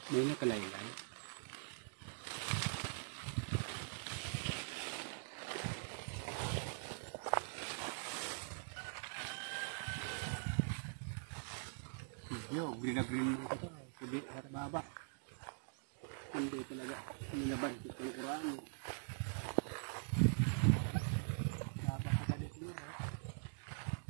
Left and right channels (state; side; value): silent; left; digital silence